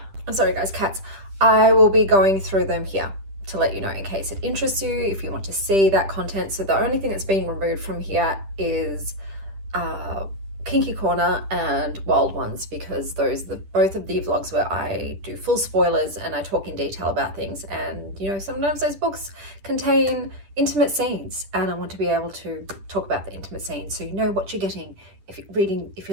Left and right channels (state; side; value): late; left; 10 ms